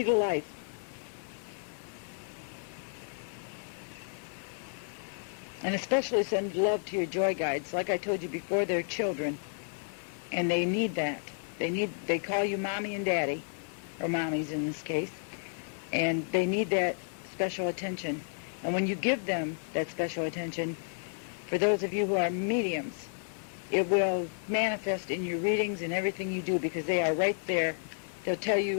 to life. And especially send love to your joy guides. Like I told you before, they're children, and they need that. They call you mommy and daddy, or mommies in this case, and they need that special attention. And when you give them that special attention, for those of you who are mediums, it will manifest in your readings and everything you do, because they are right there. They'll tell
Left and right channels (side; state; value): right; silent; 56 dB below the other